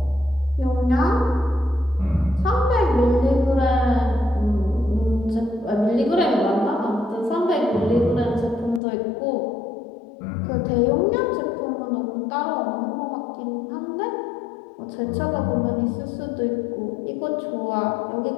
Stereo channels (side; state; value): right; drops out; at 8.8 s